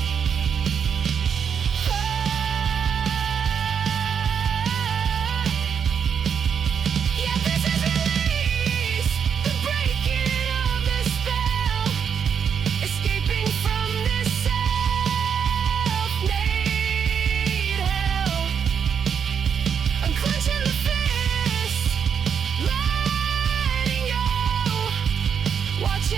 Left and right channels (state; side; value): quieter; left; 7.3 dB